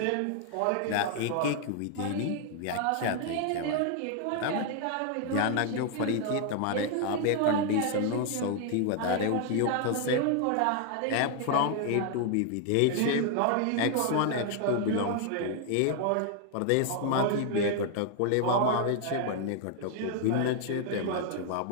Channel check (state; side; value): different; both; correlation 0.00